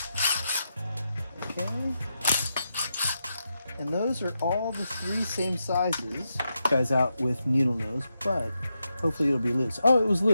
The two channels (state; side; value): inverted; both; correlation -0.86